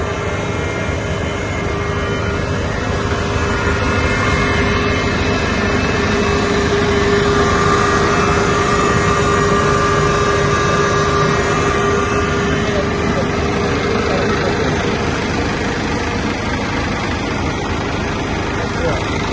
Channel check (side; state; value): both; identical; correlation 1.00